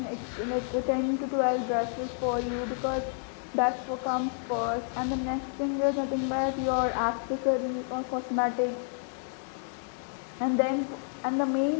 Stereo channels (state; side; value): silent; right; digital silence